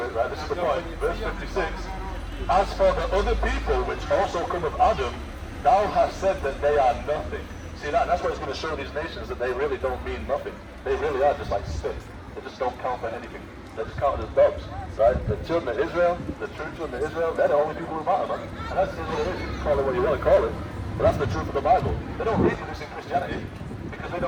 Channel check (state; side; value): identical; both; correlation 1.00